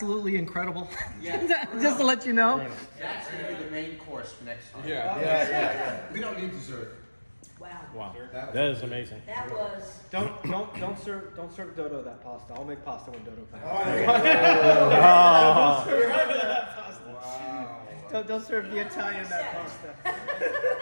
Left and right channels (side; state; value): both; inverted; correlation -1.00